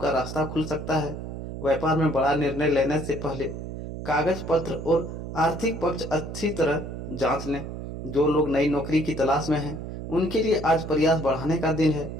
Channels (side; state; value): right; noise; hum, 8 dB below the sound